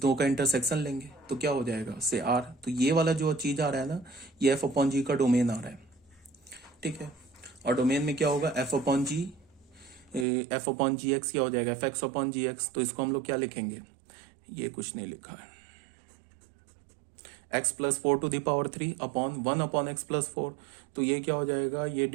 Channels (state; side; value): drops out; left; at 10.2 s